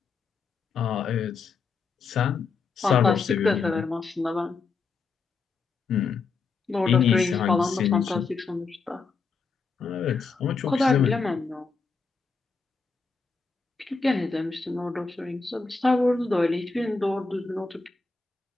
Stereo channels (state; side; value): quieter; right; 4.6 dB